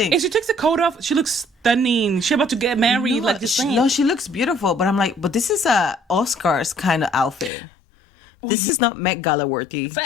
If she takes the coat off, she looks stunning. She about to get married, like this. No, she looks beautiful. But I'm like, but this is a Oscars kind of outfit. This is not Met Gala worthy.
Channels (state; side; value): drops out; right; at 7.5 s